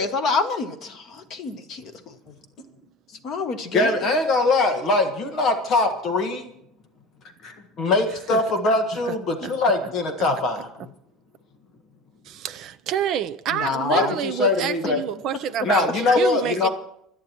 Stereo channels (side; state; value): both; normal; correlation 0.34